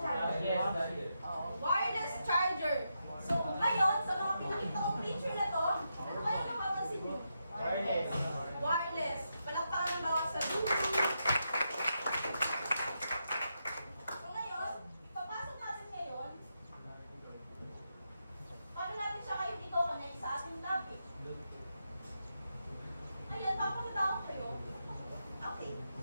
Wireless charger. So, ngayon, sa mga pinakita kong picture na to, ano kaya napapansin mo? Wireless. Palakpakan ng bawat sabi. So ngayon, ipapasok natin ngayon, paano natin siya kayo dito connect sa ating topic? Ayan, papakita ko kayo. Okay.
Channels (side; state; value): both; inverted; correlation -0.84